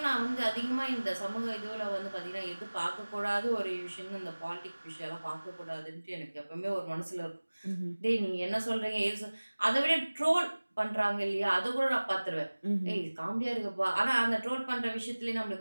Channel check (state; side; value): inverted; both; correlation -1.00